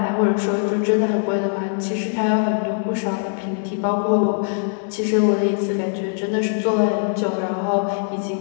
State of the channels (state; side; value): silent; right; 61 dB below the other